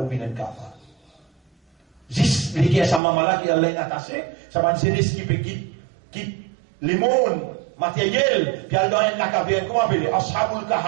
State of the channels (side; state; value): left; drops out; at 3.0 s